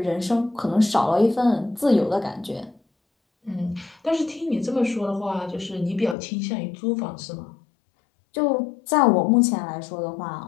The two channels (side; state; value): right; drops out; at 6.2 s